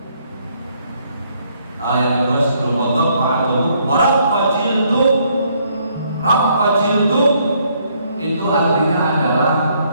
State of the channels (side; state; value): both; inverted; correlation -0.69